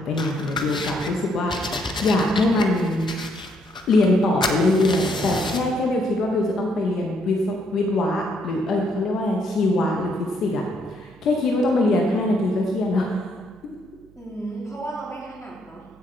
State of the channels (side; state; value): right; noise; hum, 27 dB below the sound